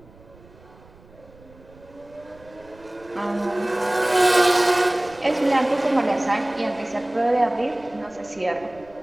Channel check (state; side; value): noise; right; rumble, 25 dB below the sound